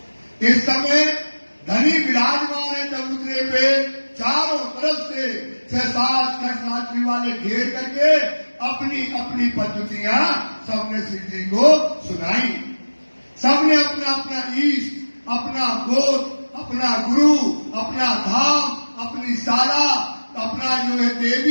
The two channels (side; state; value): both; inverted; correlation -1.00